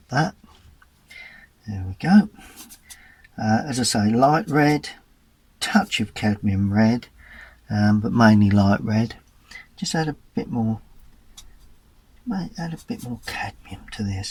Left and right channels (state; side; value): identical; both; correlation 1.00